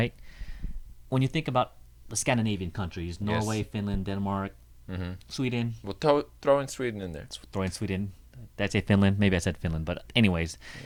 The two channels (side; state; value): both; identical; correlation 1.00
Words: When you think about the Scandinavian countries, Norway, Yes. Finland, Denmark, Sweden. We'll throw in Sweden in there. Let's throw in Sweden. Did I say Finland? Maybe I said Finland, but anyways,